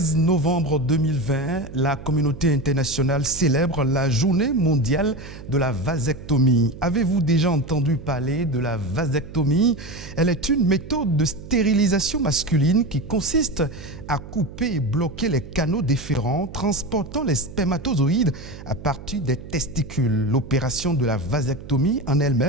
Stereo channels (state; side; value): noise; right; hum, 14 dB below the sound